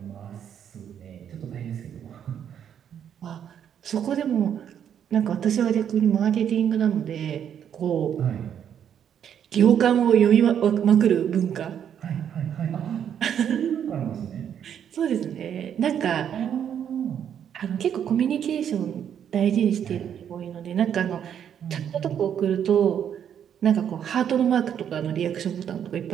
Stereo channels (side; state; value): left; quieter; 8.9 dB